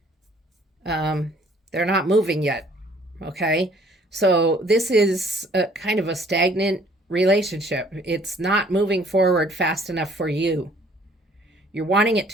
they're not moving yet. Okay, so this is a kind of a stagnant relationship. It's not moving forward fast enough for you. You're wanting it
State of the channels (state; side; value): normal; both; correlation 0.58